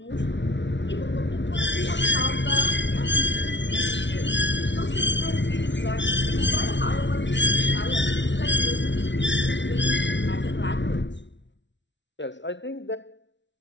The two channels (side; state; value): right; late; 0.52 ms